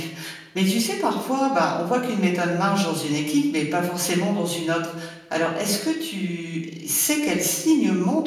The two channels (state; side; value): identical; both; correlation 1.00